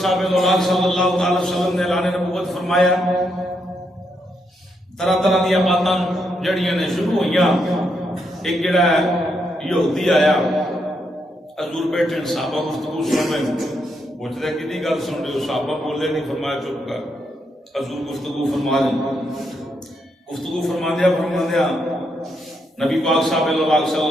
صلی اللہ علیہ وسلم نے اعلان نبوت فرمایا. طرح طرح دیا باتاں جڑیاں نے شروع ہوئیاں. ایک جڑا ہے یہودی آیا حضور بیٹھے صحابہ گفتگو سن رہے پوچھتے کدی گل سن رہے ہو صحابہ بولے نہیں فرمایا چپ کر حضور گفتگو فرما دیں. گفتگو فرما دیا نبی پاک صاحب صلی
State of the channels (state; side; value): normal; both; correlation 0.79